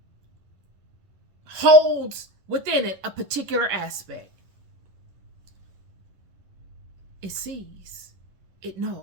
holds within it a particular aspect. It sees, it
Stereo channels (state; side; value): late; left; 11 ms